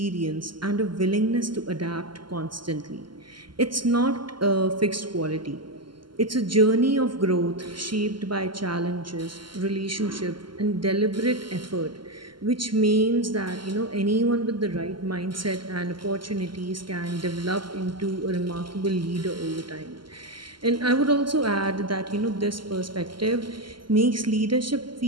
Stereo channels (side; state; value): left; late; 0.72 ms